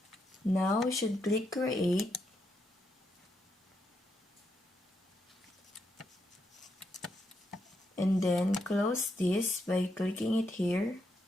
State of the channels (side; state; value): both; normal; correlation 0.80